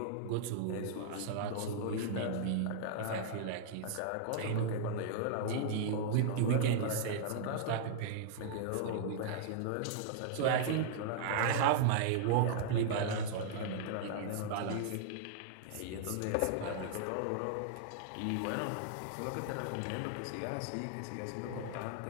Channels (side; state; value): both; different; correlation -0.01